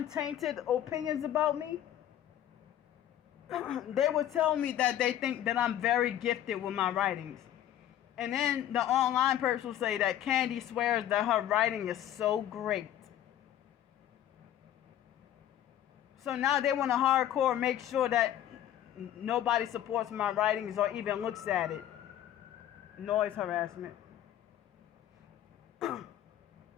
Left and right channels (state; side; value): quieter; right; 11.6 dB